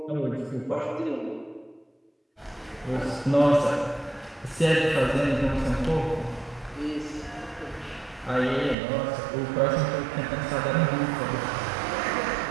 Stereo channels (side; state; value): left; drops out; at 8.8 s